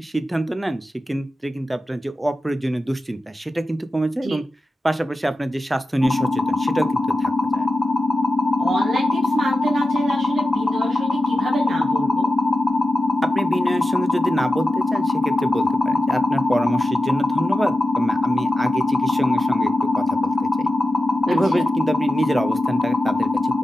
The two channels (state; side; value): normal; both; correlation 0.92